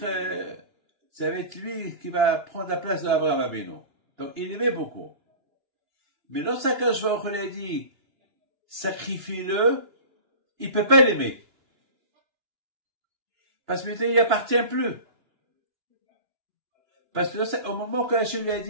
lui qui va prendre la place d'Abraham Abenu. Donc il aimait beaucoup. Mais lorsqu'Akadosh Baruch Hu lui a dit, sacrifie-le, il peut pas l'aimer. Parce que maintenant il appartient plus. Parce que au moment que Hachem lui a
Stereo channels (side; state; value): left; late; 2.9 ms